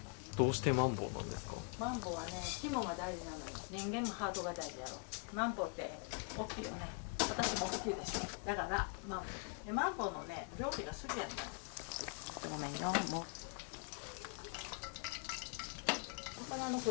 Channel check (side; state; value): right; quieter; 37.9 dB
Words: ボ。どうしてマンボウなんですか？マンボはね、肝が大事なのよ。人間もハートが大事やろ。マンボって大きいよね。私も大きいでしょ。だからマンボ。でマンボのね、料理が好きやったの。ごめんよ、もう。魚のフ